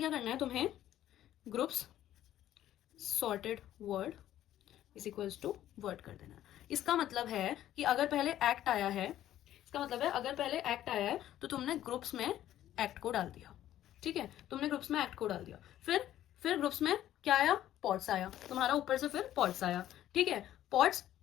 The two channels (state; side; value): quieter; right; 12.5 dB